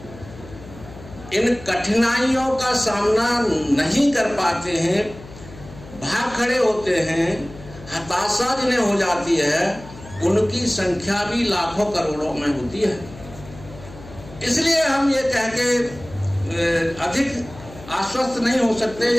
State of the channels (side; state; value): left; noise; hum, 17 dB below the sound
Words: इन कठिनाइयों का सामना नहीं कर पाते हैं, भाग खड़े होते हैं, हताशा जिन्हें हो जाती है, उनकी संख्या भी लाखों करोड़ों में होती है। इसलिए हम ये कह के अधिक आश्वस्त नहीं हो सकते